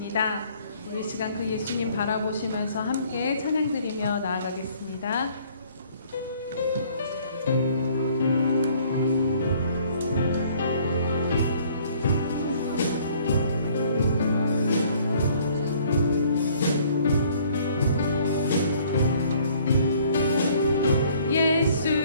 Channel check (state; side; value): inverted; both; correlation -0.59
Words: 우리 시간 그 예수님 바라보시면서 함께 찬양 드리며 나아가겠습니다.